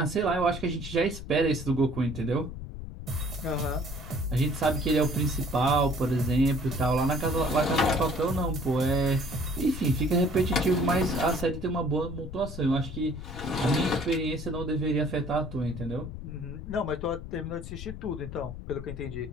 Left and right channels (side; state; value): left; noise; rumble, 10 dB below the sound